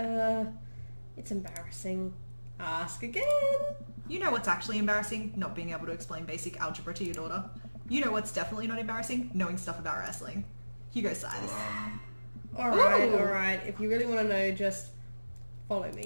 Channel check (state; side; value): inverted; both; correlation -1.00